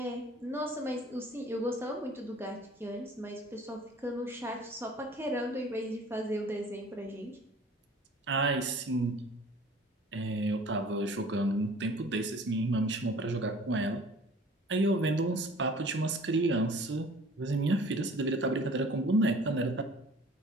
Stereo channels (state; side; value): normal; both; correlation 0.48